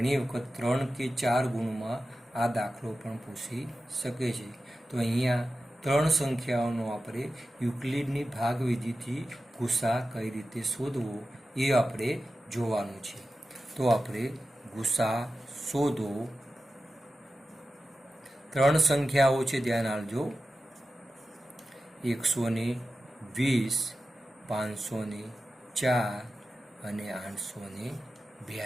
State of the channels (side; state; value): both; normal; correlation 0.93